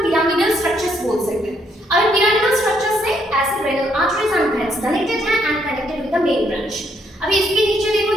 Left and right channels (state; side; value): normal; both; correlation 0.72